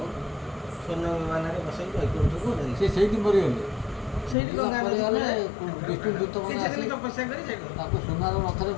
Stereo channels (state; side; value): drops out; right; at 4.4 s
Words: ସ୍ୱର୍ଣ୍ଣ ବିମାନରେ ବସେଇ ବୈକୁଣ୍ଠକୁ ନେଲେ ସେ ସେଇଠି ମରିଗଲେ ସେଇଠି ଗଙ୍ଗା ନଦୀ ବିଷ୍ଣୁ ଦୂତମାନେ ଆସିଲେ ତପସ୍ୟା କରି ତାକୁ ସୁନାର ରଥରେ